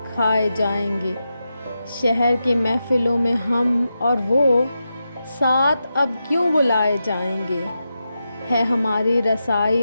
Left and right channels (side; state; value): both; inverted; correlation -0.89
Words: کھائے جائیں گے، شہر کی محفلوں میں ہم اور وہ ساتھ اب کیوں بلائے جائیں گے، ہے ہماری